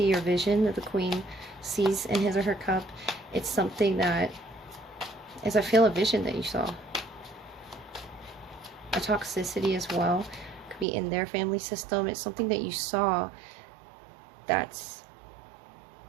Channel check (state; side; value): drops out; left; at 10.9 s